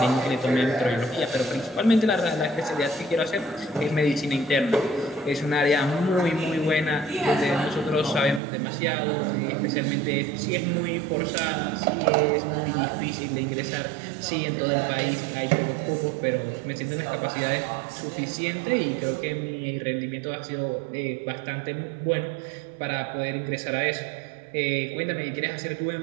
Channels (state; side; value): drops out; left; at 8.4 s